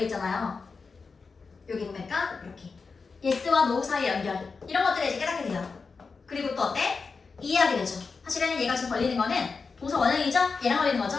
있잖아요. 여기 보니까 이렇게 yes와 no 사이의 연결. 이런 것들을 이제 깨닫게 돼요. 그리고 또 어때? 이해하게 되죠. 사실은 얘가 지금 걸리는 거는 동사 원형이죠? 얘랑 걸리는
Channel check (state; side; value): quieter; right; 4.7 dB